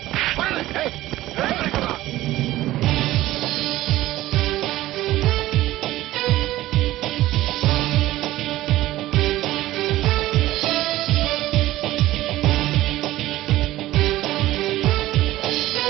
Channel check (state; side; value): quieter; left; 16.0 dB